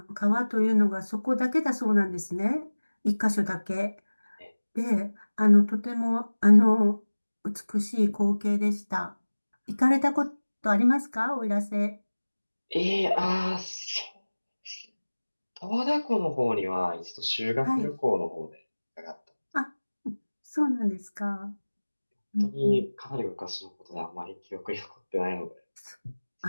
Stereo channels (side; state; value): both; inverted; correlation -1.00